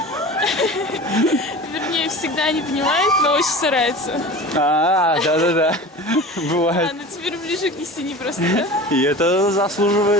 Вернее, всегда не понимает, но очень старается. Да-да-да. Бывает. Она теперь ближе к истине просто, да? И это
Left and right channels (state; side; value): normal; both; correlation 0.36